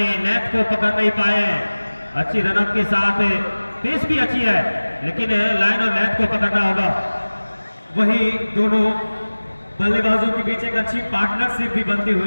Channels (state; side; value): inverted; both; correlation -1.00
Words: लेंथ को पकड़ नहीं पाए। अच्छी रनअप के साथ पेस भी अच्छी है, लेकिन लाइन और लेंथ को पकड़ना होगा। वही दोनों बल्लेबाजों के बीच एक अच्छी पार्टनरशिप भी बनती